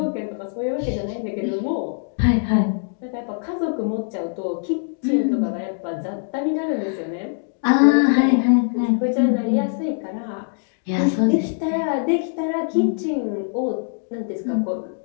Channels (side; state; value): right; silent; digital silence